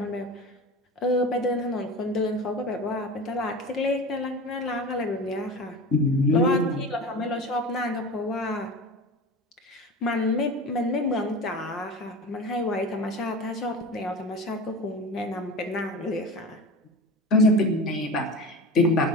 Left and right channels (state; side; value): normal; both; correlation 0.31